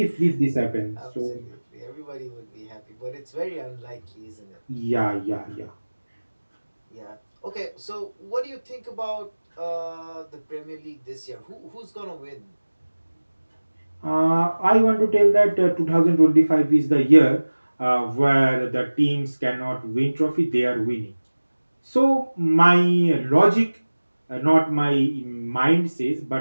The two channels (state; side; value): inverted; both; correlation -1.00